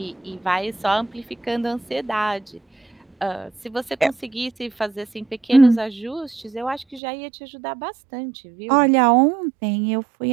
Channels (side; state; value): left; drops out; at 7.0 s